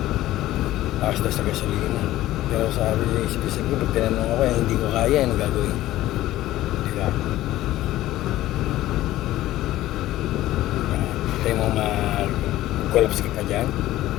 Takas na sa gasolina. Pero sabi niya, isip-isip ko, pag tinanong ako, hindi ko kaya, ano gagawin? Diba? Tayo mo mag-collapse ka pa dyan.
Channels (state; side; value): quieter; right; 15.2 dB